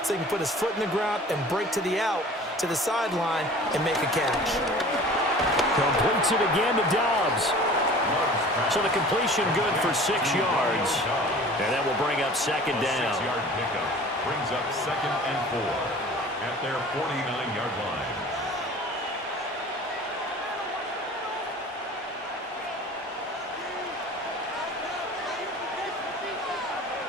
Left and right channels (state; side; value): normal; both; correlation 0.44